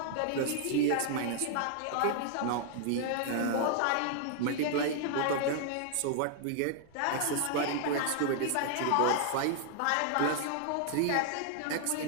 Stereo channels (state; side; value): different; both; correlation 0.00